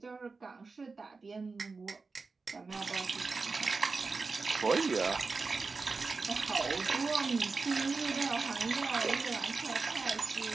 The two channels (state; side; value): quieter; left; 4.2 dB